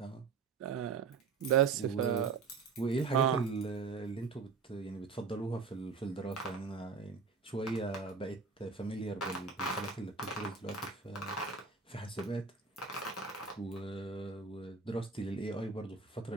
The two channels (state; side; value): quieter; left; 5.1 dB